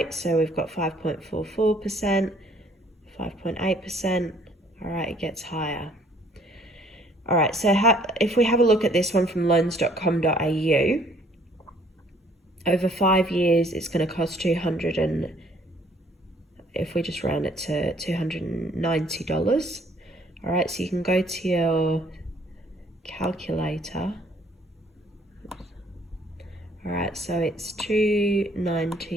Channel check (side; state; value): both; normal; correlation 0.60